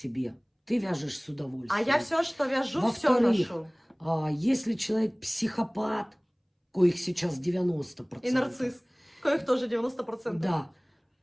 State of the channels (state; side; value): identical; both; correlation 1.00